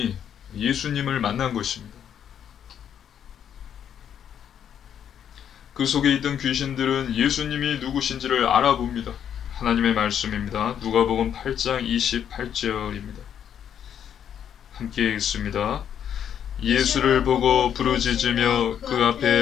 예수님을 만난 것입니다. 그 속에 있던 귀신들은 예수님이 누구신지를 알아봅니다. 하나님의 말씀입니다. 누가복음 8장 28절입니다. 함께 읽습니다. 예수를 보고 부르짖으며 그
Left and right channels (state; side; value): quieter; right; 9.0 dB